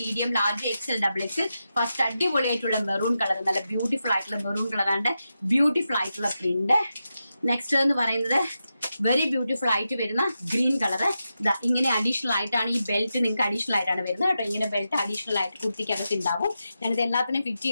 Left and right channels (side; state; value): both; inverted; correlation -0.89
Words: medium, large, XL, XXL. First അടിപൊളിയായിട്ടുള്ള മെറൂൺ കളർ, നല്ല ബ്യൂട്ടിഫുൾ ആയിട്ടുള്ള മെറൂൺ കളറാണ്. ബ്യൂട്ടിഫുൾ ആയിട്ടുള്ള പ്രിന്റ്. നെക്സ്റ്റ് എന്ന് പറയുന്നത് വെരി ബ്യൂട്ടിഫുൾ ആയിട്ട് വരുന്ന ഗ്രീൻ കളർ. ഇങ്ങനെ അഡീഷണൽ ആയിട്ടാണ് ഈ ബെൽറ്റ് നിങ്ങൾക്ക് അഡീഷണൽ ആയിട്ടാണ് വരുന്നത് കേട്ടോ. ഇങ്ങനെ ബെൽറ്റ് അഡീഷണൽ ആയിട്ട് കുർത്തിക്കകത്ത് ഉണ്ടാവും. ഞാനിത് എല്ലാത്തിനും ഫിറ്റ്